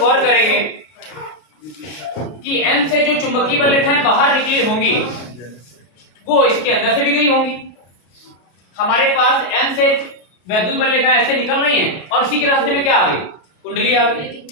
करेंगे कि N से जो चुंबकीय बल रेखाएं बाहर निकली होंगी वो इसके अंदर से भी गई होंगी। हमारे पास N से वैद्युत बल रेखाएं ऐसे निकल रही हैं और इसी के रास्ते में क्या आ गई, कुंडली आ गई।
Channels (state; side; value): late; right; 33 ms